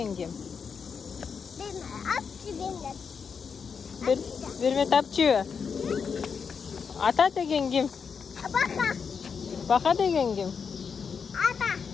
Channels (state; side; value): quieter; right; 6.1 dB